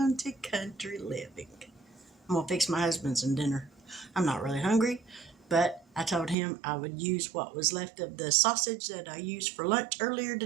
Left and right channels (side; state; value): left; drops out; at 6.4 s